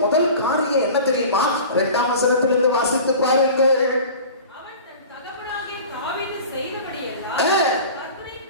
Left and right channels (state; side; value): inverted; both; correlation -0.39